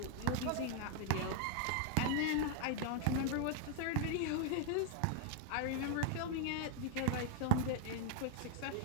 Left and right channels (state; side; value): different; both; correlation 0.00